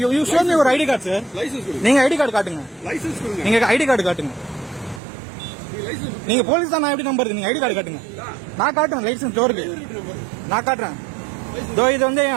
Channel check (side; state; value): left; drops out; at 5.0 s